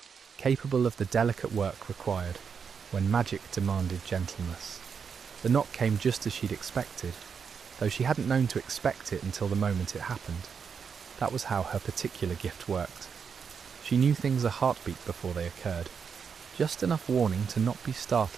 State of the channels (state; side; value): quieter; left; 6.4 dB